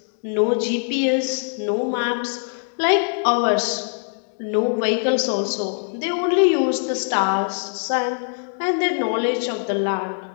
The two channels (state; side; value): silent; right; 64 dB below the other